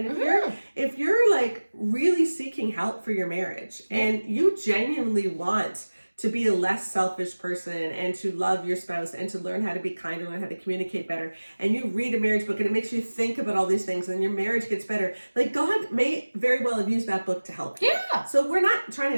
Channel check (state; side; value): inverted; both; correlation -1.00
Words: if you're like really seeking help for your marriage and you genuinely want to be a less selfish person and to love your spouse and to learn how to be kinder, learn how to communicate better, and you read a marriage book and it makes you think about all these things and your marriage gets better, like, God may very well have used that book to help you. So we're not trying